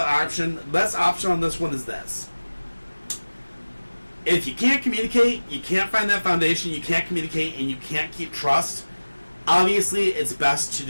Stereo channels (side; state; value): both; inverted; correlation -1.00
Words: on this one is this. If you can't communicate, you can't find that foundation, you can't communicate, and you can't keep trust, obviously it's best to